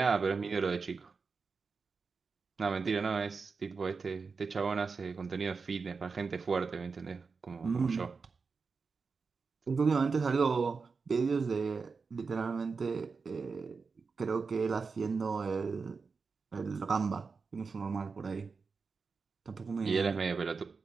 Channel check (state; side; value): quieter; left; 4.8 dB